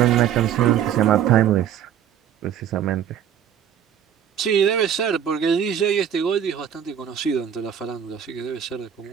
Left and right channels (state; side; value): quieter; left; 9.3 dB